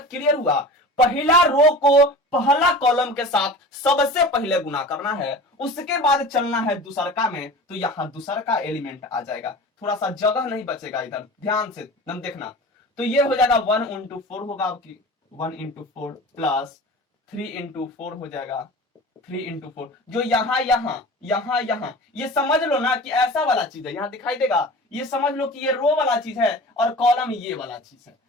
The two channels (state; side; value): normal; both; correlation 0.36